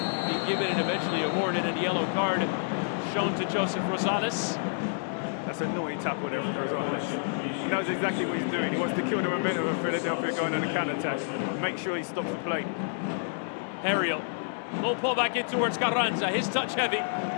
being given and eventually awarded, and a yellow card shown to Joseph Rosales. That's a naughty tackle there from Rosales. He knows exactly what he's doing. He wants to kill the momentum of Philadelphia going on a counter-attack. Make sure he stops the play. Ariel. Low pull back in towards Carranza. His touch heavy.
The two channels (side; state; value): right; silent; 59 dB below the other